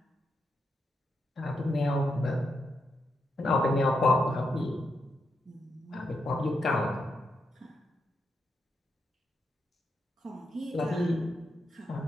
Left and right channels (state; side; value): normal; both; correlation 0.83